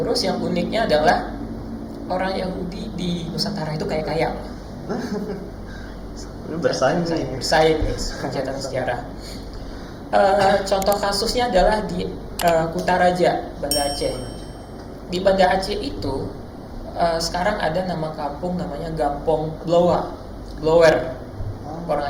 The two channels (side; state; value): both; identical; correlation 1.00